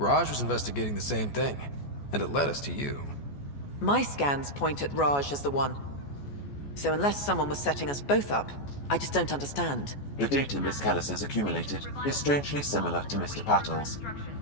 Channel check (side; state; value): right; late; 14 ms